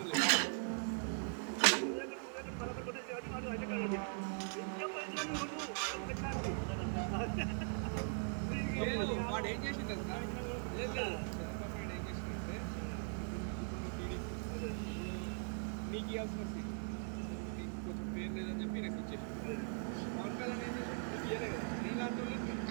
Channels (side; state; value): left; silent; 51 dB below the other